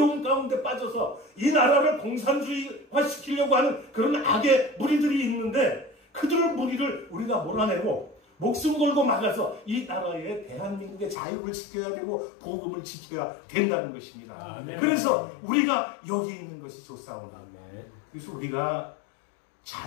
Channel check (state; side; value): drops out; right; at 11.2 s